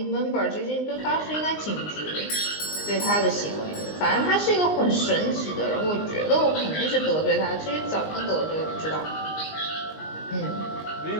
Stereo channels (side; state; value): right; late; 19 ms